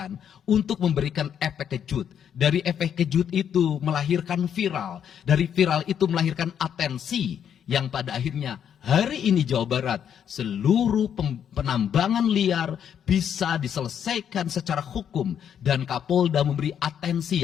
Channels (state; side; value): quieter; right; 8.7 dB